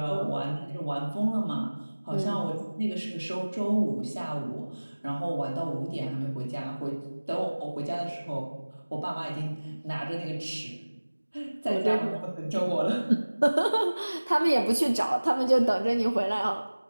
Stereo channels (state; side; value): inverted; both; correlation -1.00